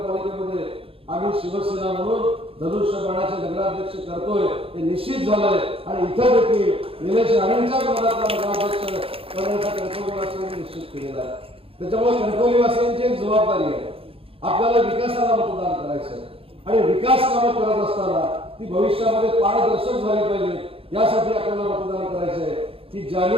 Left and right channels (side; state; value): left; late; 0.27 ms